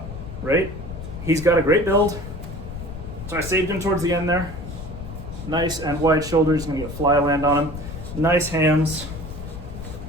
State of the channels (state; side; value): noise; left; rumble, 10 dB below the sound